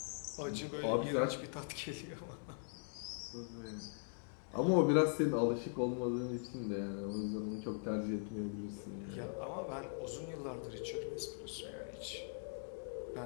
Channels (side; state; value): right; silent; digital silence